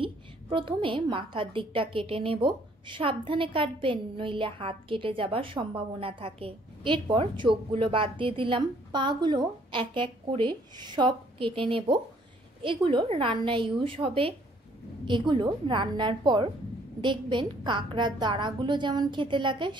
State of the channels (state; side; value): normal; both; correlation 0.62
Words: প্রথমে মাথার দিকটা কেটে নেব। সাবধানে কাটবেন, নইলে হাত কেটে যাবার সম্ভাবনা থাকে। এরপর চোখগুলো বাদ দিয়ে দিলাম। পাগুলো এক এক করে সব কেটে নেব। এগুলো রান্নায় ইউজ হবে। এগুলো রান্নার পর দেখবেন কাঁকড়ার দাঁড়াগুলো যেমন খেতে লাগে